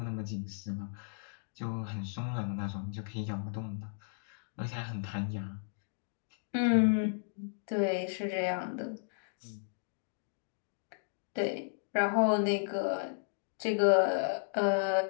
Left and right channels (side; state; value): right; silent; digital silence